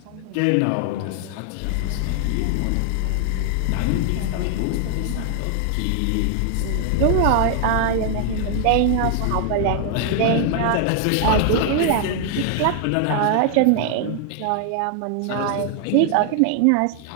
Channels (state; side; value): different; both; correlation 0.00